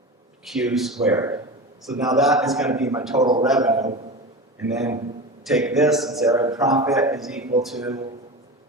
Q squared. So now that is going to be my total revenue. And then take this and say our profit is equal to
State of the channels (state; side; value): normal; both; correlation 0.27